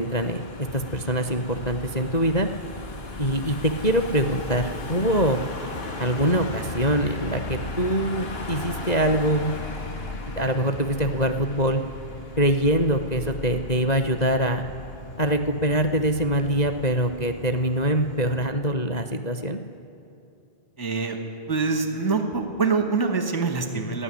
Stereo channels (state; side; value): late; right; 2.0 ms